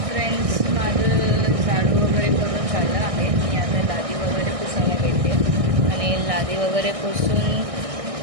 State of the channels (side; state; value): left; late; 1.6 ms